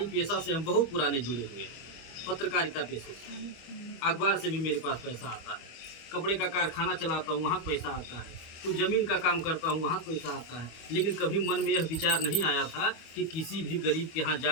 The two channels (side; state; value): right; late; 25 ms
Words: पेशा से हम बहुत पुराने जुड़े हुए हैं, पत्रकारिता पेशे से। अखबार से भी मेरे पास पैसा आता है। कपड़े का कारखाना चलाता हूँ, वहाँ पैसा आता है। तो ज़मीन का काम करता हूँ, वहाँ पैसा आता है। लेकिन कभी मन में यह विचार नहीं आया था कि किसी भी गरीब के यहाँ